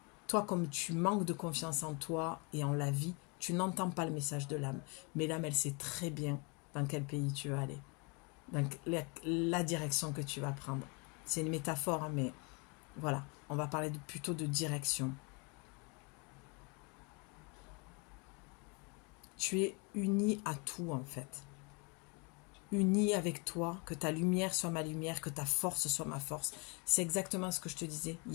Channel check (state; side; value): quieter; right; 31.1 dB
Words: Toi, comme tu manques de confiance en toi et en la vie, tu n'entends pas le message de l'âme. Mais l'âme, elle sait très bien dans quel pays tu vas aller, dans la direction que tu vas prendre. C'est une métaphore, hein, mais voilà, on va parler plutôt de direction. Tu es uni à tout, en fait. Uni avec toi, que ta lumière soit ma lumière, que ta force soit ma force. C'est exactement ce que je te disais. Il